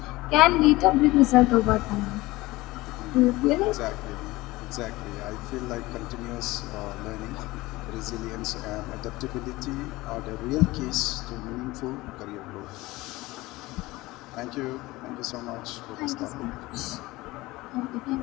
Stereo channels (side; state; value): right; quieter; 19.9 dB